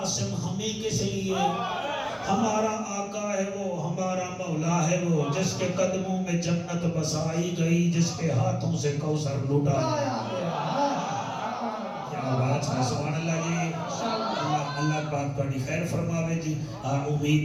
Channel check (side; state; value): both; identical; correlation 1.00